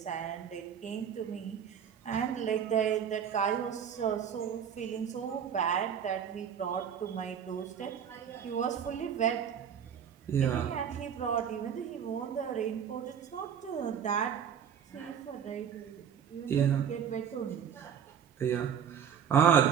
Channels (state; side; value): quieter; left; 8.2 dB